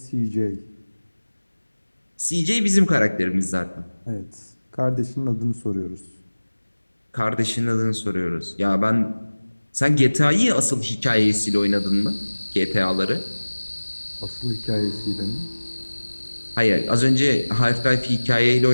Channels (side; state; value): both; inverted; correlation -1.00